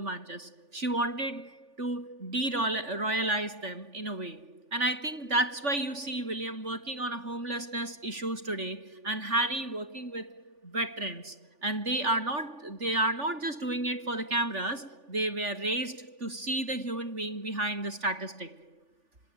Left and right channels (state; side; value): late; left; 3.5 ms